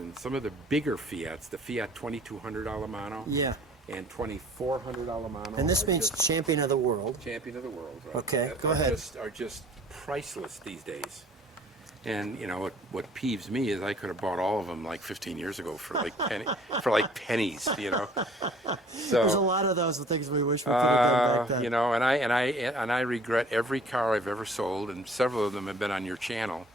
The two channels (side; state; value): both; normal; correlation 0.52